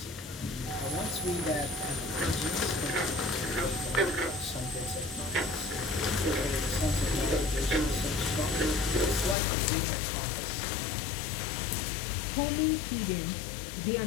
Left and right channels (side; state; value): right; drops out; at 9.3 s